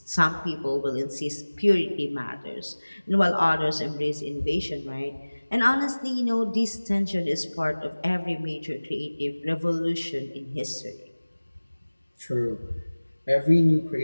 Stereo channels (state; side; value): inverted; both; correlation -1.00